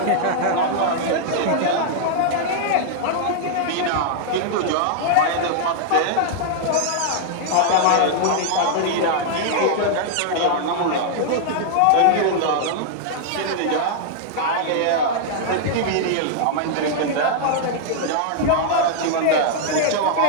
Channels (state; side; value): different; both; correlation -0.01